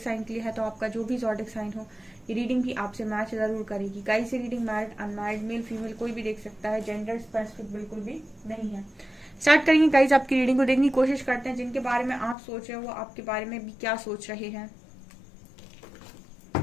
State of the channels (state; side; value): drops out; right; at 12.4 s